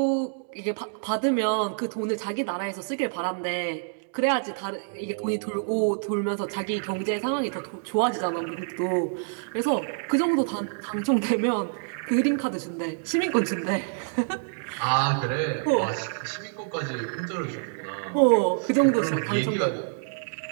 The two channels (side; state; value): left; silent; digital silence